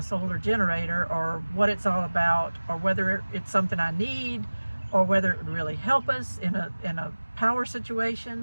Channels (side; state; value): both; inverted; correlation -1.00